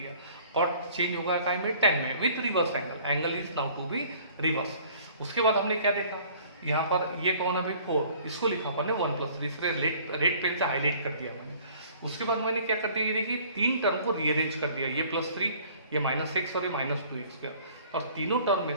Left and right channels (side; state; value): both; inverted; correlation -0.53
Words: कॉट चेंज होगा काय में, tan में with reverse angle, angle is now to be reverse. उसके बाद हमने क्या देखा, यहाँ पर ये कौन है भाई 4, इसको लिखा अपन ने 1 + 3, इसलिए रेड पेन से हाईलाइट कर दिया मैंने। उसके बाद मैंने क्या कर दिया, ये देखिए 3 टर्म को रीअरेंज कर दिया, ये +3, ये -x और ये -2x स्क्वायर, और तीनों टर्म में